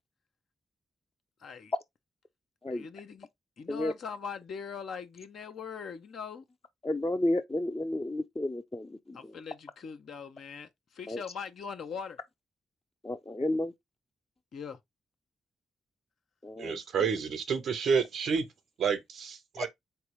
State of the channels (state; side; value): normal; both; correlation 0.78